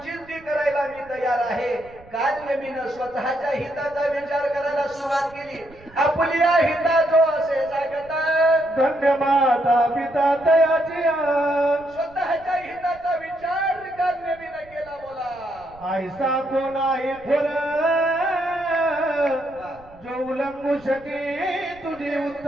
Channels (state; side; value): noise; right; rumble, 24 dB below the sound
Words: ती करायला मी तयार आहे. कालनेमीनं स्वतःच्या हिताचा विचार करायला सुरुवात केली. आपल्या हिताचो असे जागता धन्य माता पिता तयाची स्वतःच्या हिताचा विचार कालनेमीनं केला. बोला ऐसा कोण आहे थोर जो उल्लंघू शके तुझे